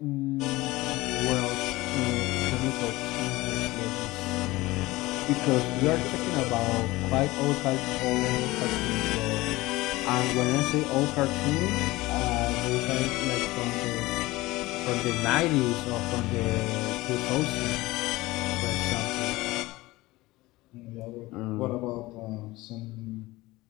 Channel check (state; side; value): quieter; right; 19.8 dB